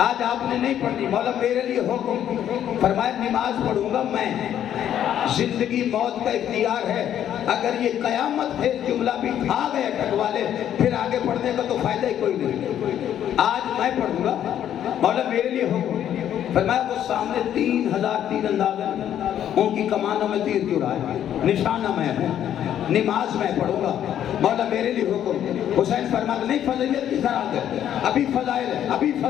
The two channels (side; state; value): right; quieter; 10.5 dB